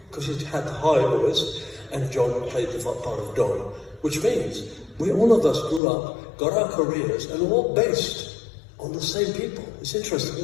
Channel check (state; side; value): drops out; right; at 5.8 s